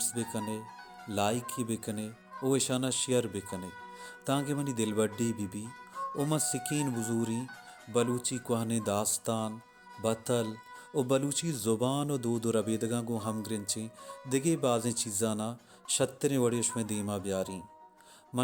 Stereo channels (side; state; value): both; identical; correlation 1.00